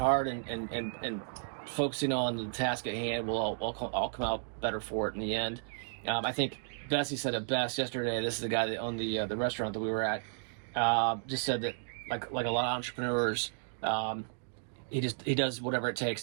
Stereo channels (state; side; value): silent; left; digital silence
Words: and focusing on the task at hand. We'll all come out better for it in the end. I think Bessie said it best yesterday. This is the guy that owned the restaurant that we were at. Just said that like a lot of entrepreneurs, he does whatever it